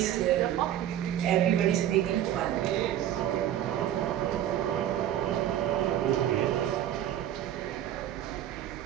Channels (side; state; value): left; quieter; 11.5 dB